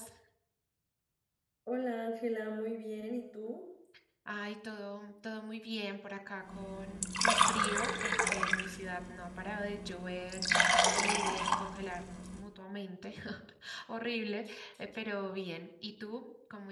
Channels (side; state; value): both; identical; correlation 1.00